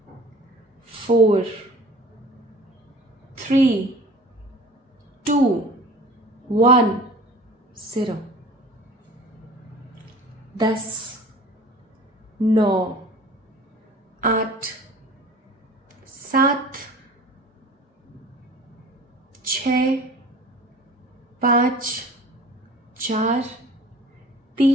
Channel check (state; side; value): normal; both; correlation 0.44